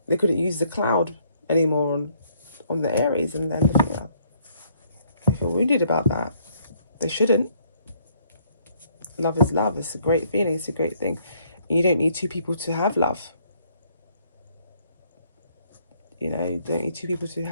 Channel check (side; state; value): both; inverted; correlation -0.66